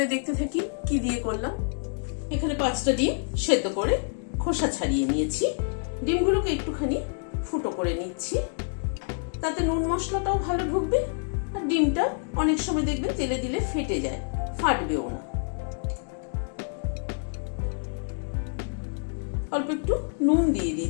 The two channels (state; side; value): silent; right; digital silence